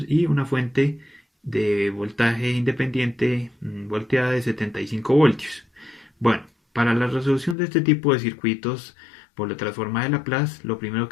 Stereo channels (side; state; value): right; drops out; at 7.6 s